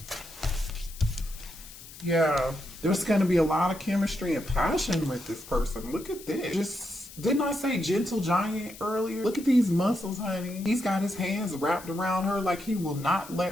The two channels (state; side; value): noise; left; hiss, 17 dB below the sound